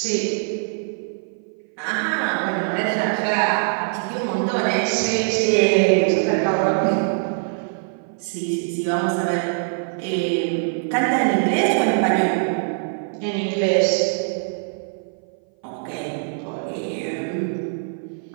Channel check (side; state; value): left; silent; 58 dB below the other